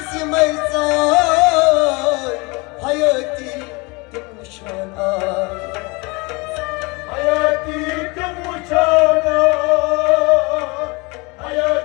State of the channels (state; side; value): quieter; right; 27.3 dB